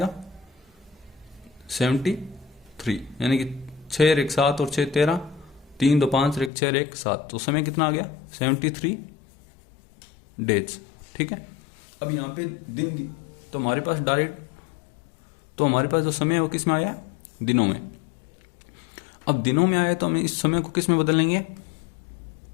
73, यानी कि 6 1 7 और 6 13, 3 2 5 1 6 1 7, तो समय कितना आ गया 73 डेज। ठीक है, अब यहाँ पे दिन, तो हमारे पास डायरेक्ट, तो हमारे पास जो समय है वो किस में आया, दिनों में। अब दिनों में आया तो हम इस समय को किस में बदल लेंगे,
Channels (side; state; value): right; drops out; at 6.5 s